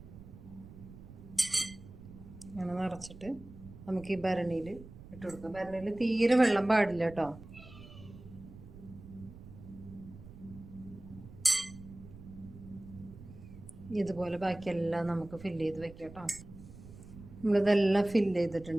അങ്ങനെ നിറച്ചിട്ട് നമുക്ക് ഈ ഭരണിയിൽ ഇട്ട് കൊടുക്കാം. ഭരണിയിൽ തീരെ വെള്ളം പാടില്ല കേട്ടോ. ഇതുപോലെ ബാക്കിയെല്ലാം നമുക്ക് ഫില്ല് ചെയ്ത് വെക്കാം കേട്ടോ. നമ്മളിതെല്ലാം ഫില്ല്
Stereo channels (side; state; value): right; noise; rumble, 17 dB below the sound